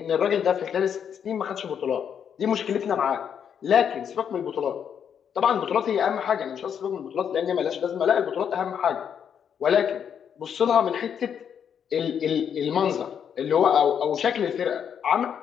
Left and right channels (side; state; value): right; quieter; 8.0 dB